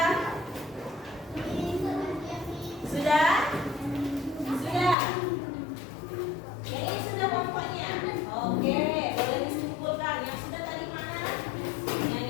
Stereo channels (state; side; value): drops out; right; at 5.0 s